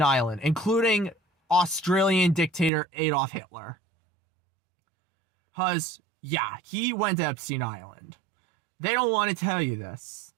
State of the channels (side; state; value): left; drops out; at 2.7 s